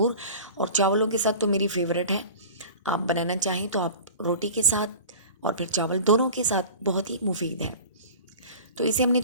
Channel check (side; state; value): both; inverted; correlation -0.38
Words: और चावलों के साथ तो मेरी फेवरेट है। आप बनाना चाहें तो आप रोटी के साथ और फिर चावल दोनों के साथ बहुत ही मुफीद है। तो इसे हमने